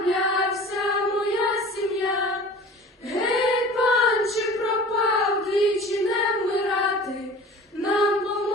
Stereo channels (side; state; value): both; normal; correlation 0.42